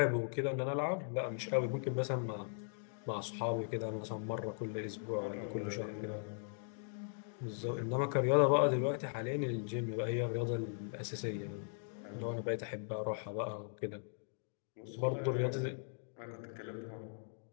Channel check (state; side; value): silent; right; digital silence